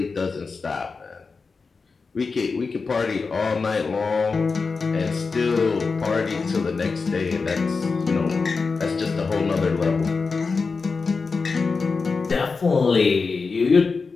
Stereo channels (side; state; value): right; quieter; 4.6 dB